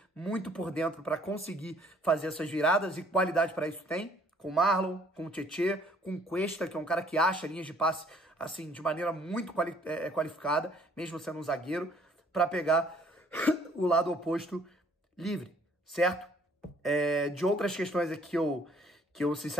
muito por dentro para conseguir fazer essas viradas, e qualidade para isso tem. Com o Marlon, com o Tietê, com o Cuesta, que é um cara que acha linhas de passe assim, de maneira muito qualificada, mesmo sendo um zagueiro, para pegar o lado oposto livre, certo? De outras questões aqui que eu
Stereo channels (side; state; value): both; normal; correlation 0.60